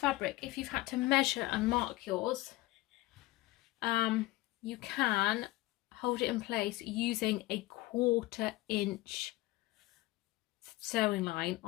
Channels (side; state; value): right; quieter; 18.7 dB